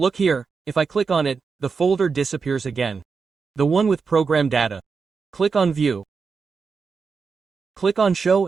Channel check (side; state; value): left; quieter; 5.2 dB